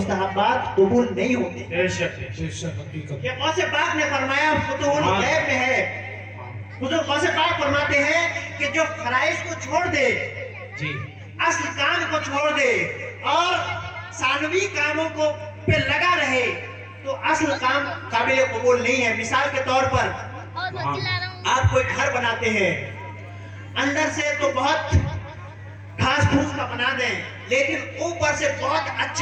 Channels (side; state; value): both; identical; correlation 1.00